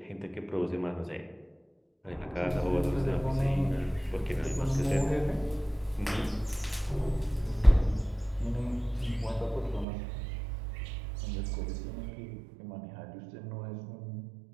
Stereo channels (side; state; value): left; drops out; at 9.9 s